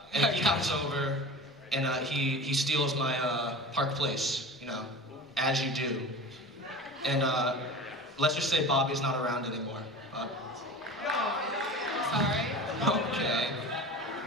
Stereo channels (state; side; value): normal; both; correlation 0.34